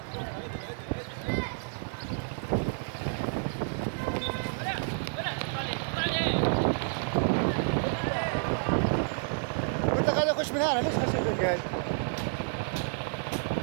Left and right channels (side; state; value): left; silent; 58 dB below the other